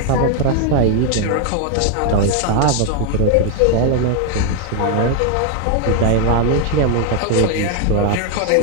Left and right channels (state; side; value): different; both; correlation 0.01